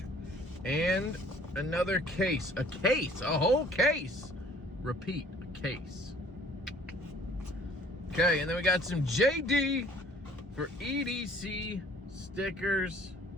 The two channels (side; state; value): both; normal; correlation 0.55